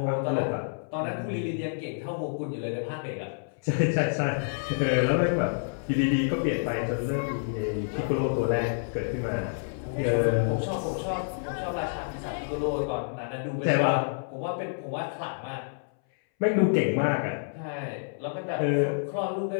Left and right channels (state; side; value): silent; right; 59 dB below the other